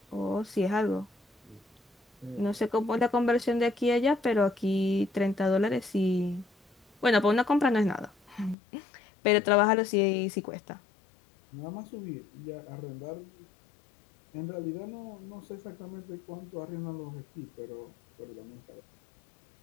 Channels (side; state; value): right; drops out; at 8.6 s